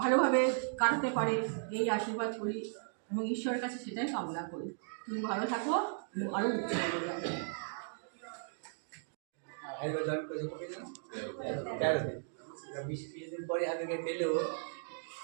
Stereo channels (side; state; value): left; silent; digital silence